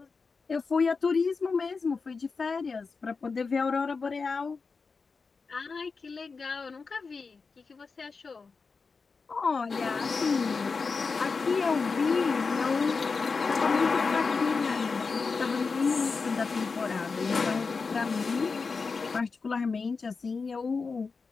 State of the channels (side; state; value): right; quieter; 4.7 dB